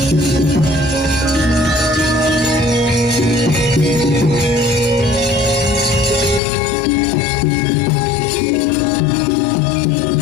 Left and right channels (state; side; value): drops out; right; at 6.4 s